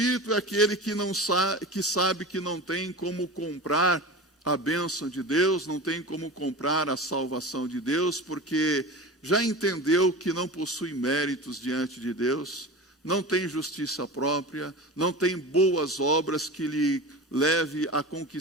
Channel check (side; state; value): both; normal; correlation 0.31